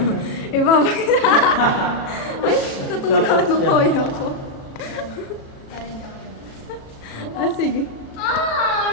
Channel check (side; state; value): right; late; 36 ms